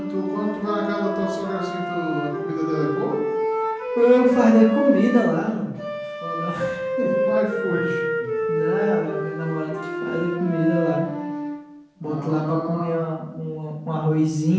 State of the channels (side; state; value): both; identical; correlation 1.00